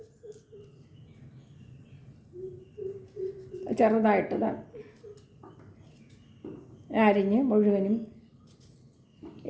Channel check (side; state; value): both; identical; correlation 1.00